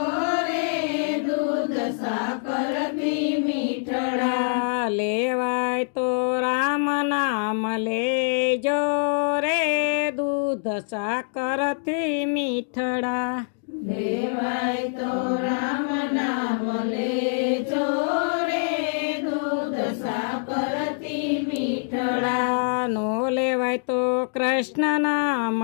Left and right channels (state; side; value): silent; right; digital silence